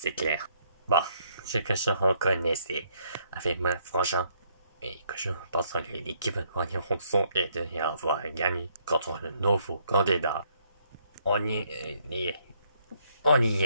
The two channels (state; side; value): inverted; both; correlation -0.69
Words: clair. Bon, ce que je reconnaissais avec mon frangin et que je pense que l'équipe de Ranson est de y avoir gagné contre le nouveau candidat. On y